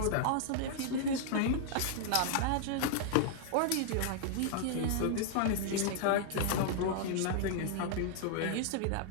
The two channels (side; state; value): both; different; correlation -0.01